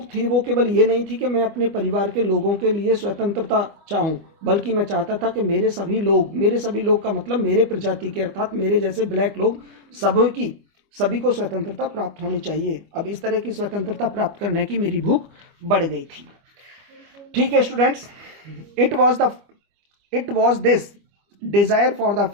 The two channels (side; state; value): left; late; 25 ms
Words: थी वो केवल ये नहीं थी कि मैं अपने परिवार के लोगों के लिए स्वतंत्रता चाहूँ, बल्कि मैं चाहता था कि मेरे सभी लोग का मतलब मेरे प्रजाति के, अर्थात मेरे जैसे ब्लैक लोग, सभी को स्वतंत्रता प्राप्त होनी चाहिए। अब इस तरह की स्वतंत्रता प्राप्त करने की मेरी भूख बढ़ गई थी। ठीक है students, it was this desire for the